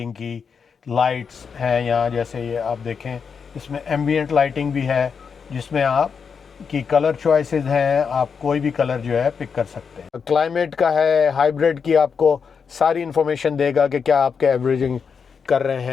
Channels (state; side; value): quieter; right; 6.1 dB